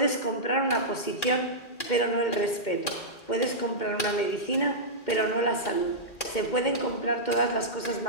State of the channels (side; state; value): right; late; 2.1 ms